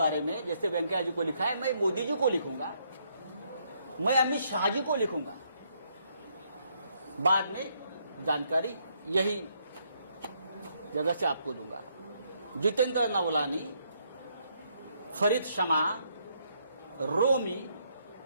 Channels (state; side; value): inverted; both; correlation -0.73